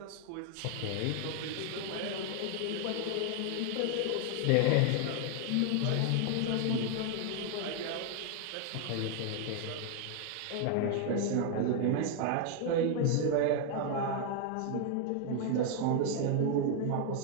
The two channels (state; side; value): different; both; correlation 0.00